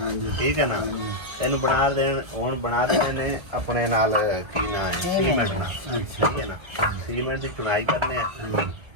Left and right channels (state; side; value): late; left; 1.7 ms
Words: ਠੀਕ ਹੈ ਨਾ? ਇਹਨੂੰ ਬਣਾ ਦੇਣ, ਹੁਣ ਬਣਾ ਦੇਣੇ ਨੇ ਆਪਣੇ ਨਾਲ ਕੀ ਨਾ ਹੈ ਸੀਮੈਂਟ ਨਾਲ। ਠੀਕ ਹੈ ਨਾ? ਸੀਮੈਂਟ ਦੀ ਚੁਣਾਈ ਕਰਨੇ ਆ,